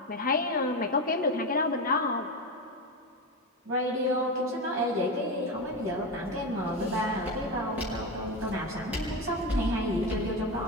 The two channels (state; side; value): normal; both; correlation 0.17